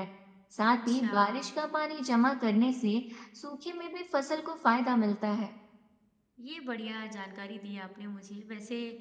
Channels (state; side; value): identical; both; correlation 1.00